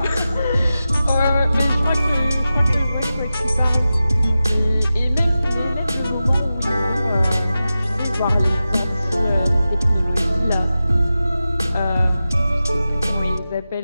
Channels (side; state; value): both; inverted; correlation -0.93